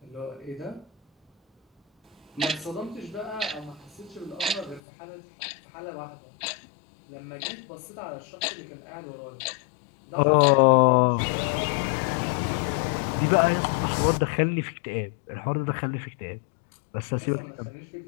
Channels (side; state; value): right; drops out; at 4.8 s